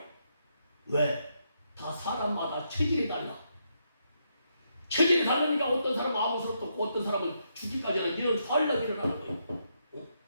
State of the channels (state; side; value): inverted; both; correlation -0.79